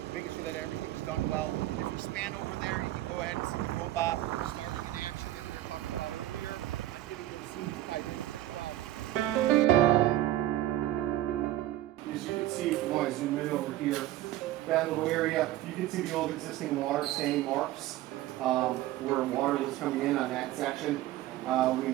making sure that everything's done well. If you span over there, you can go ahead and see the robot starting in action that we were talking about earlier on getting those seams tied in as well. As you can see, if I zoom in over here, that little area, you can see the old existing water stain marks where water was coming in on that section. We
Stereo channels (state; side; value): quieter; left; 14.8 dB